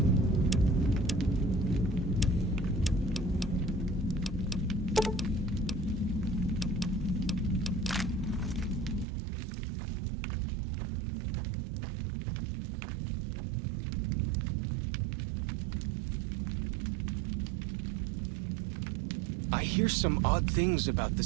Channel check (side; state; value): left; drops out; at 9.1 s